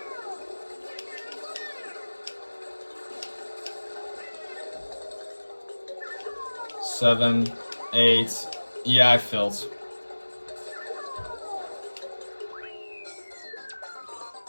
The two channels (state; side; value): inverted; both; correlation -1.00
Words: Seven, 8. Yeah, I failed.